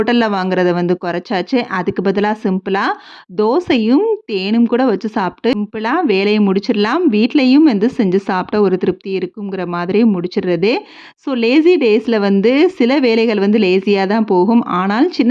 வாங்குறத வந்து குறைச்சாச்சு. அதுக்கு பதிலா சிம்பிளா தோசையும், தேனும் கூட வச்சு சாப்பிட்டு சிம்பிளா வேலைய முடிச்சிடலாம். வீட்லயும் வந்து செஞ்சு சாப்பிட்டா ஒரு திருப்தி இருக்குங்கிற மாதிரி முடிச்சிடுறது. ஸோ லேசி டேஸ்ல வந்து சில வேலைகள் வந்து லேசியா தான் போகும். ஆனால்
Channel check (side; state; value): both; identical; correlation 1.00